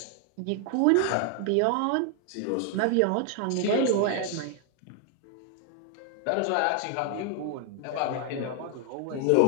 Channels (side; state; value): both; different; correlation 0.00